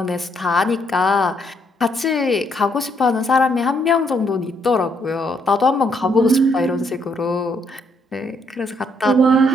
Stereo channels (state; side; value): normal; both; correlation 0.72